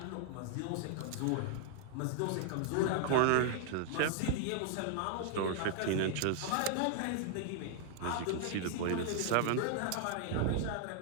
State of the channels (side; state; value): both; different; correlation 0.00